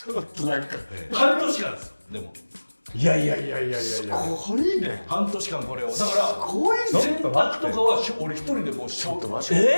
ょっとなんか半年間ですよ。でもいやこれいいね。半年間これをだからすごいね。洗濯とかは俺一人でもう仕事や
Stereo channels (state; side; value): inverted; both; correlation -1.00